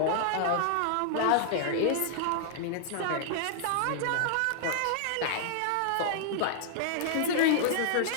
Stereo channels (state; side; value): different; both; correlation -0.01